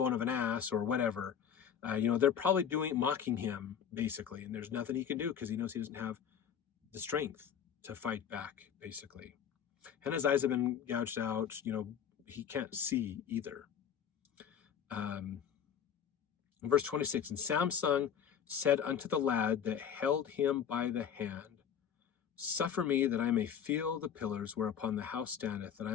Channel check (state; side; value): quieter; right; 8.3 dB